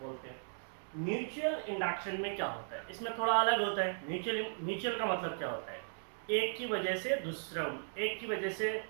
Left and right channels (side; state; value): left; silent; digital silence